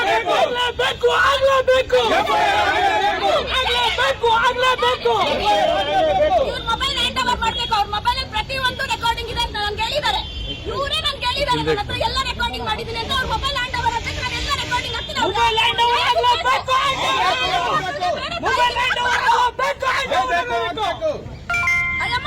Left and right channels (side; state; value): both; identical; correlation 1.00